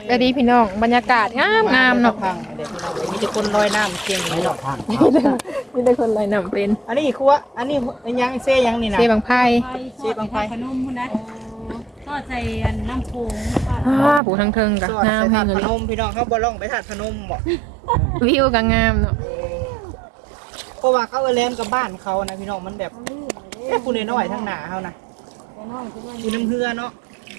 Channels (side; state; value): left; drops out; at 14.2 s